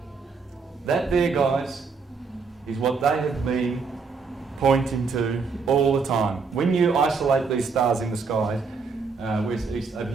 That there, guys, is what they have been pointing to all the time. When you isolate these stars in the sky, where's the east over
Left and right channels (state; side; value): quieter; left; 4.9 dB